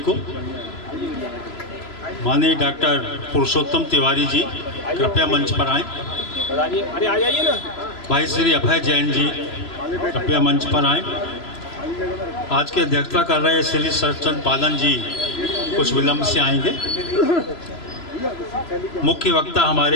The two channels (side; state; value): right; late; 3.0 ms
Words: को। माननीय डॉक्टर पुरुषोत्तम तिवारी जी कृपया मंच पर आएं। अरे आ जाइए ना। भाई श्री अभय जैन जी कृपया मंच पर आएं। आज की अध्यक्षता कर रहे श्री सरचंद पालन जी कुछ विलंब से आएंगे। मुख्य वक्ता